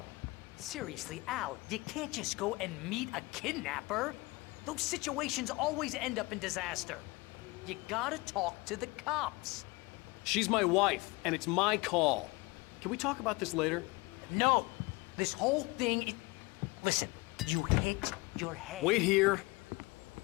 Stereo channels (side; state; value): right; quieter; 24.2 dB